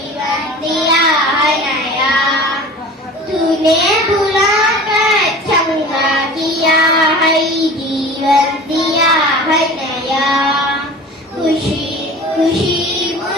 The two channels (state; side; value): normal; both; correlation 0.39